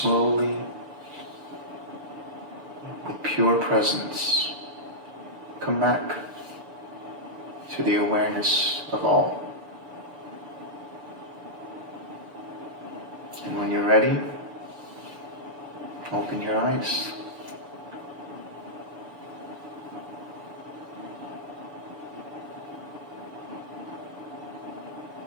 with pure presence, come back to the awareness of all. And when you're ready, open your eyes.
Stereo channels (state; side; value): late; left; 6.9 ms